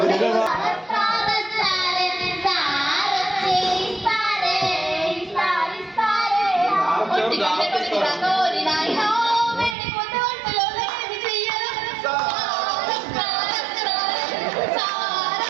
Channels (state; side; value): drops out; left; at 9.8 s